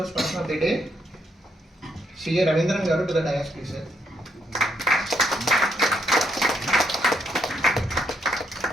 person of the day, CA Ravindran garu to the dais, please, sir.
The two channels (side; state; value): both; normal; correlation 0.75